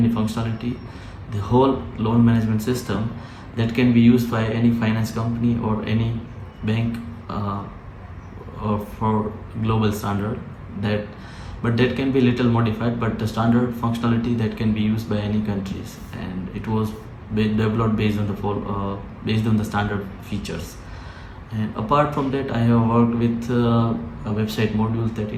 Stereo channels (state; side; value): identical; both; correlation 1.00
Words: functionality. The whole loan management system that can be used by any finance company or any bank or for global standard, but that can be little modified, but the standard functionality that can be used by any countries, and it was developed based on the standard features. And apart from that, I have worked with a website module that